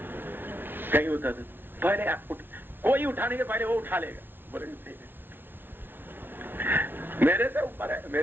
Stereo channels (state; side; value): late; left; 0.10 ms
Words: कहीं होता था पहले कोई उठाने के पहले वो उठा लेगा, बोले मेरे से ऊपर